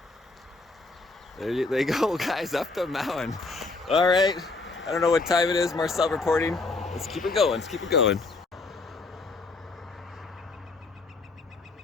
There they go, guys, up the mountain. All right, I don't know what time it is. Marcel reporting. Let's keep it going. Let's keep it going.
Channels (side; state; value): right; quieter; 3.6 dB